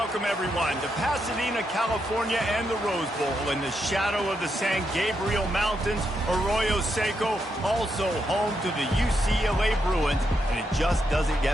everyone, to Pasadena, California, and the Rose Bowl in the shadow of the San Gabriel Mountains. Arroyo Seco, also home to the UCLA Bruins, and it just doesn't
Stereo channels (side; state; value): both; normal; correlation 0.81